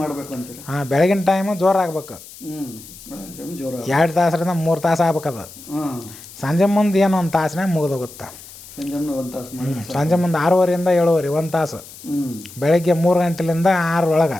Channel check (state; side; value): noise; left; hiss, 18 dB below the sound